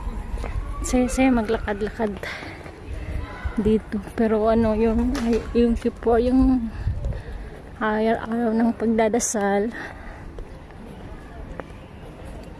Saya maglakad-lakad dito, pero ano yung Kippur, yung araw ng pagdadasal.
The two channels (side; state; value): both; identical; correlation 1.00